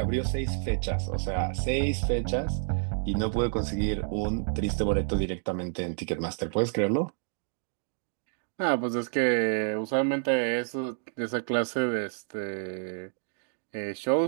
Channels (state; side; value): silent; left; digital silence